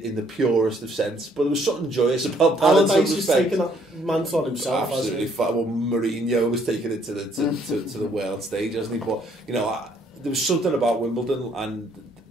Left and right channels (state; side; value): normal; both; correlation 0.65